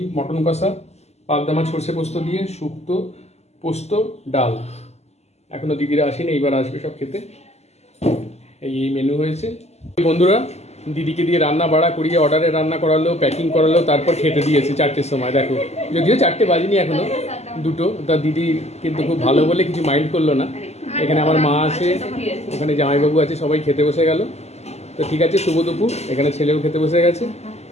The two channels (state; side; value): late; right; 0.31 ms